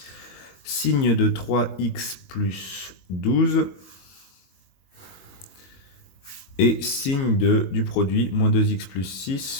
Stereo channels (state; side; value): late; right; 22 ms